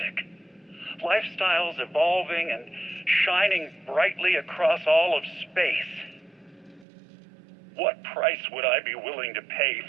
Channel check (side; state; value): left; drops out; at 6.9 s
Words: lifestyles evolving and shining brightly across all of space. What price would I be willing to pay